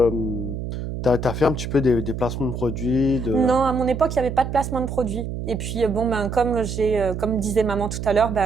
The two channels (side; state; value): right; noise; hum, 6 dB below the sound